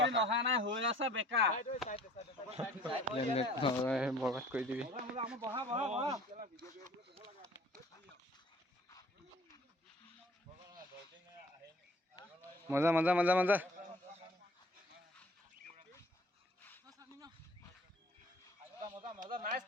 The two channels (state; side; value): normal; both; correlation 0.52